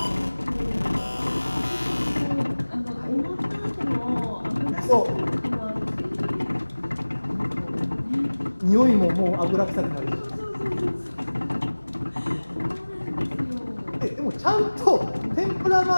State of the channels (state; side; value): inverted; both; correlation -1.00